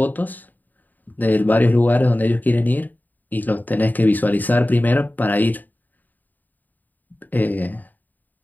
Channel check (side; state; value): right; late; 0.085 ms